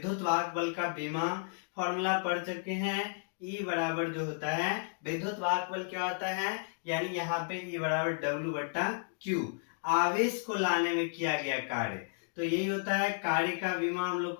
वाहक बल का विमा फॉर्मूला पढ़ चुके हैं। E बराबर जो होता है विद्युत वाहक बल क्या होता है, यानी यहाँ पे E बराबर W/Q, आवेश को लाने में किया गया कार्य। तो यही होता है कार्य का विमा, हम लोग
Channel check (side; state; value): right; silent; digital silence